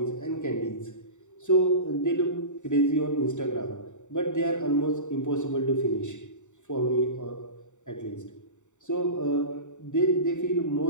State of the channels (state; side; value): late; right; 0.85 ms